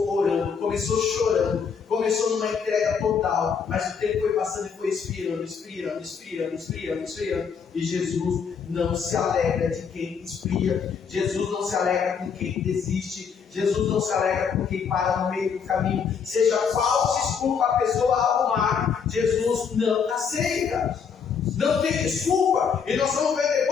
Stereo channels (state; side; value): quieter; right; 6.4 dB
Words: orando, começou chorando, começou numa entrega total, mas o tempo foi passando e foi esfriando. E Jesus não se alegra de quem esfria, Jesus não se alegra com quem desiste, Jesus não se alegra com quem para no meio do caminho, seja qual desculpa a pessoa arrumar, Jesus não aceita. Não tem desculpa. E nós vamos ver